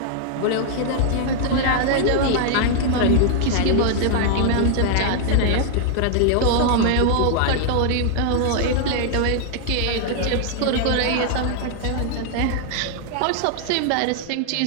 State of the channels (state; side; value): different; both; correlation 0.00